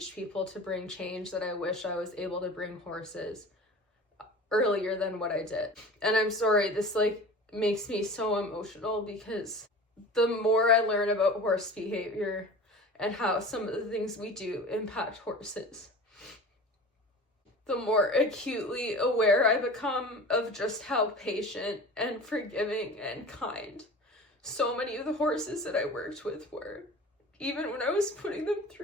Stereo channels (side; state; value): both; normal; correlation 0.38